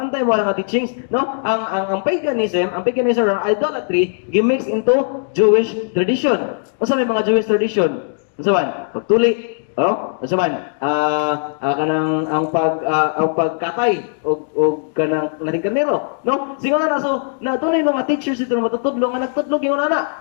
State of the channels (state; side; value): silent; right; 66 dB below the other